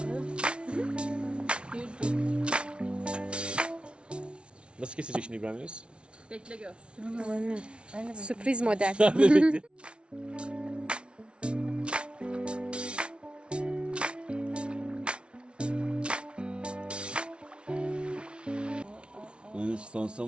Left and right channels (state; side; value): late; left; 0.058 ms